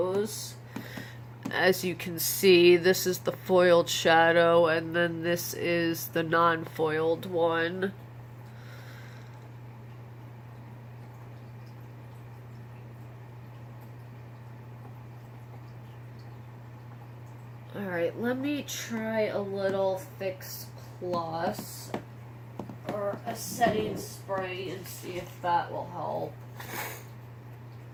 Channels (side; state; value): both; identical; correlation 1.00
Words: As you can see, this is the foiled shadow, and then this is the non-foiled one. Alright, let me try a little Fix Plus or a setting spray and see if that will help.